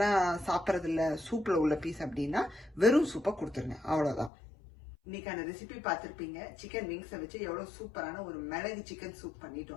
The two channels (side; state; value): right; drops out; at 4.3 s